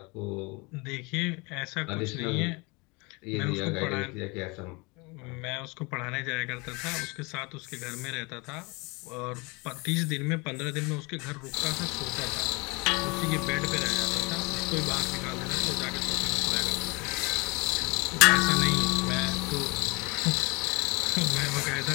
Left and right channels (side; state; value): right; quieter; 27.7 dB